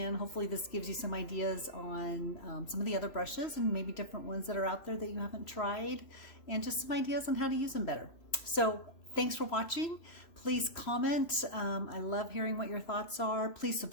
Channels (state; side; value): late; right; 3.0 ms